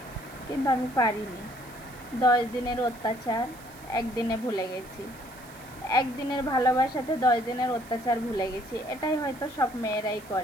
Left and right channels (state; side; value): noise; right; hiss, 22 dB below the sound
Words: কিন্তু আমি পারিনি। 10 দিনের অত্যাচার একদিনে ভুলে গেছি, একদিনের ভালোবাসাতে 10 দিনের অত্যাচার ভুলে গেছি। এটাই হয়তো সব মেয়েরাই